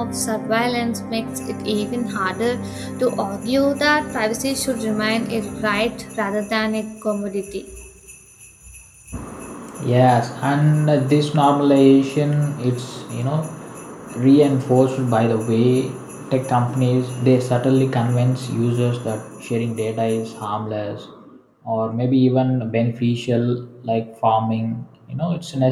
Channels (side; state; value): both; identical; correlation 1.00